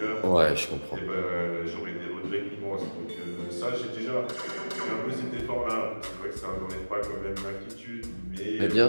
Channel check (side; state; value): both; inverted; correlation -1.00